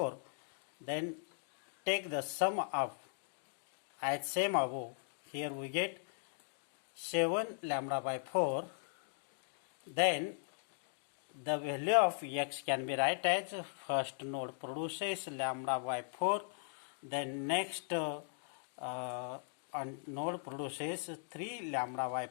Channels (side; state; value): right; silent; digital silence